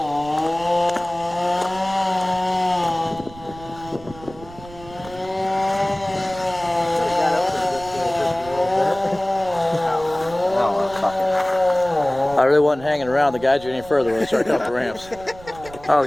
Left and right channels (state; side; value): noise; right; rumble, 18 dB below the sound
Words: I really wasn't hanging around to guide you any further when we started coming up the ramps. I